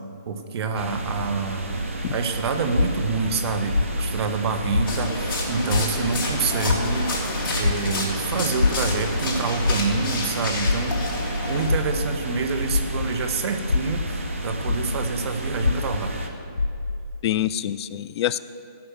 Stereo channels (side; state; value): both; inverted; correlation -0.57